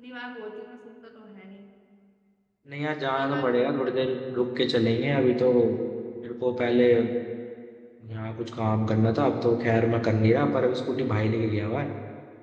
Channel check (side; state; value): both; identical; correlation 1.00